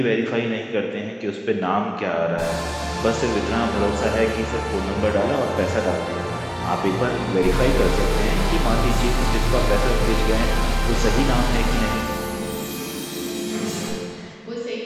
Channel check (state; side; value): identical; both; correlation 1.00